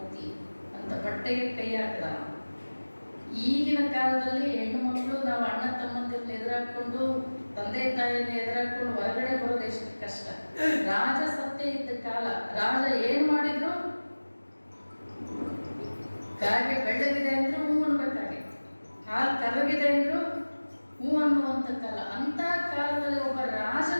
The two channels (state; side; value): inverted; both; correlation -1.00